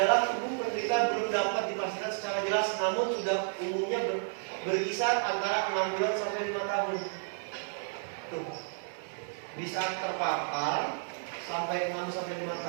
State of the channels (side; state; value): left; silent; digital silence